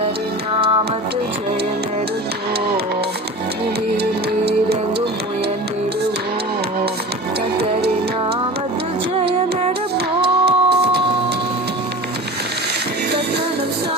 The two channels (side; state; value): both; normal; correlation 0.35